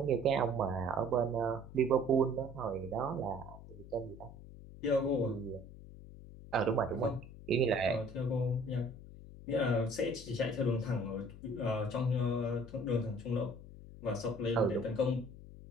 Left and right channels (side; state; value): left; noise; hum, 16 dB below the sound